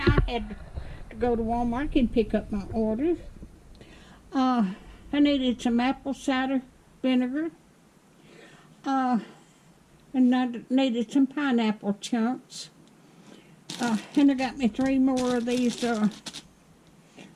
had to go to Walmart and pick up my orders. I needed some apple cider vinegar. And I needed some pineapple chunks. And I got me 3 more of these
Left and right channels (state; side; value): identical; both; correlation 1.00